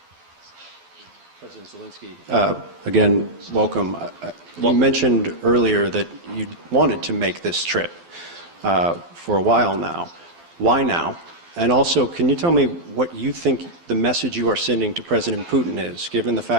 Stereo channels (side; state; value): left; late; 12 ms